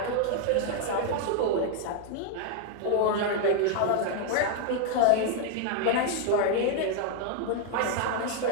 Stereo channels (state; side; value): different; both; correlation 0.00